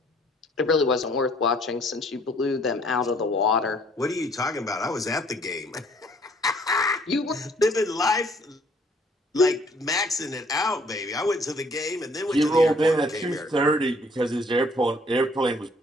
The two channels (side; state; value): both; normal; correlation 0.61